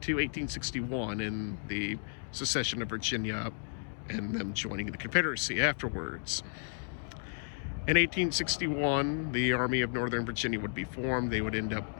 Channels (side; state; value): right; silent; digital silence